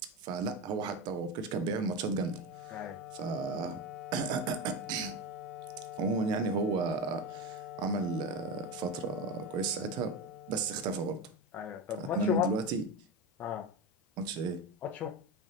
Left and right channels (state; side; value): normal; both; correlation 0.20